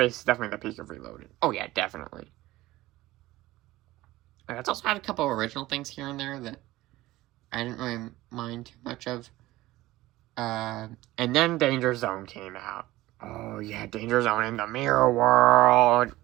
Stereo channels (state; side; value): quieter; left; 17.5 dB